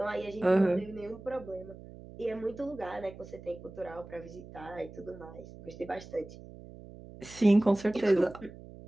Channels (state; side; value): noise; right; hum, 16 dB below the sound